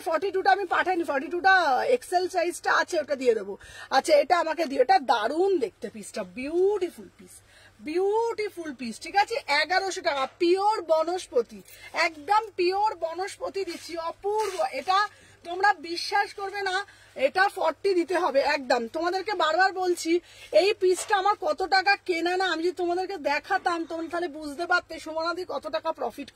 42টা আমি পাঠাইনি, 42টা এক্সেল সাইজটা আছে, ওটা দিয়ে দেবো। আচ্ছা এটা আমাকে দিও, এটা দারুণ দেখতে পিসটা, বিউটিফুল পিস, বিউটিফুল পিস, ঠিক আছে? 1100 টাকা, পিওর বনস্পতি, একদম পিওর বনস্পতি দিচ্ছি, অপূর্ব। এটা তোমরা বিশ্বাস করবে না, এটা 40 দিতে হবে একদম। তোমাদেরকে বারবার বলছি, এই পিসটা আমার কত টাকা কেনা না, আমি যদি তোমাদেরকে দেখাতাম তোমরা তাহলে বুঝতে পারতে সুমনাদি কত টাকা প্রফিট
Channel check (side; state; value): both; identical; correlation 1.00